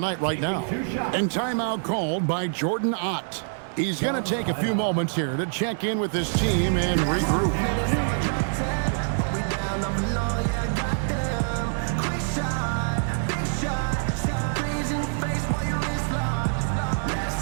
right now. And timeout called by Jordan Ott. He's going to take a few moments here to check in with his team and regroup.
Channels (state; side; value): silent; left; 61 dB below the other